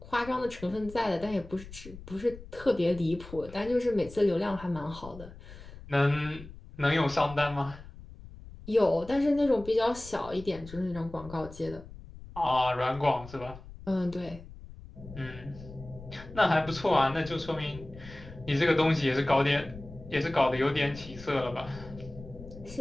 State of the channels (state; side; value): noise; left; rumble, 16 dB below the sound